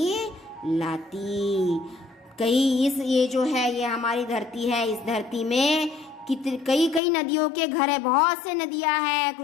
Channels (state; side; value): drops out; right; at 7.0 s